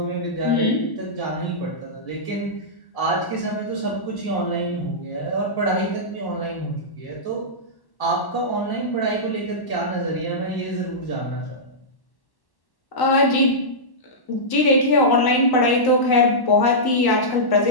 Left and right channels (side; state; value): right; late; 1.1 ms